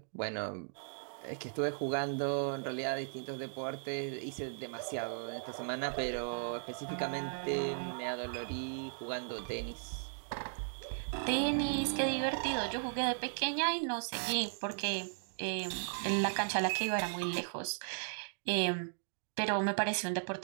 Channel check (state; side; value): silent; left; digital silence